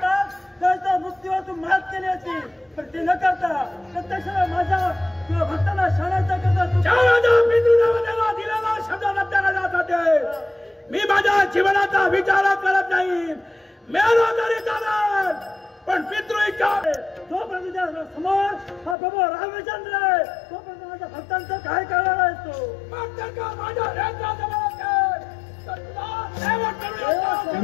तर त्या मृत्यूवर तू मात केली असती. पण ते न करता प्रत्यक्ष माझ्या तुझ्या भक्ताला शरणाचा करता दिलेला शब्द रद्द करण्यासाठी मी माझ्या जीवनाचा विचार करत नाही. मेलो तरी चालेल पण पितृ इच्छा तोपर्यंत तुझ्या समोर हा प्रभू रामचंद्र आहे. तोपर्यंत माझ्या भक्तांचं काय करणार आहेस तू? मग जर का माझ्या रेंद्राजवळ असेल तर तुला सेवा करूया.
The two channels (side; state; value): right; drops out; at 18.9 s